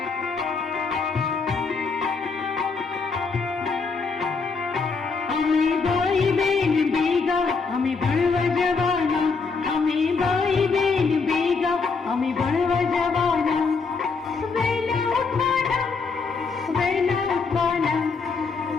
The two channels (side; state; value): right; quieter; 4.7 dB